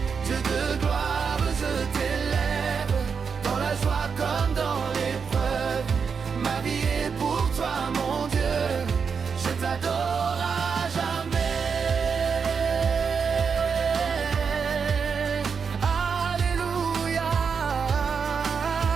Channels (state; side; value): quieter; left; 5.9 dB